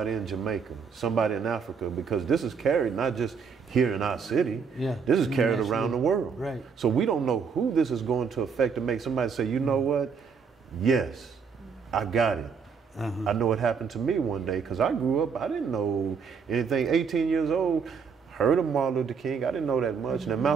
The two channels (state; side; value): quieter; left; 5.9 dB